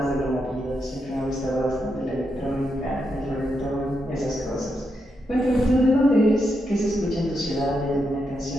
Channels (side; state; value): both; normal; correlation 0.83